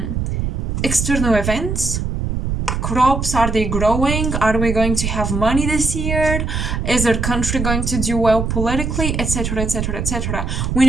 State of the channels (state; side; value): noise; right; rumble, 2 dB below the sound